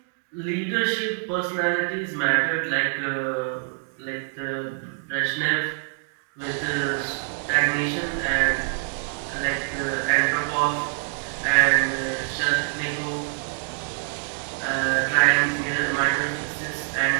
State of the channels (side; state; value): left; silent; digital silence